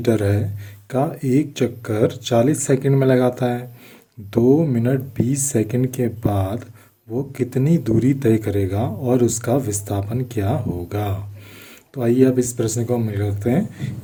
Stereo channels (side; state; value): both; identical; correlation 1.00